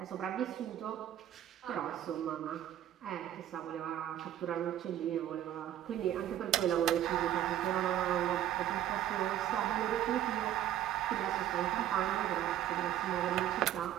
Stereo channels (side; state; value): left; quieter; 11.7 dB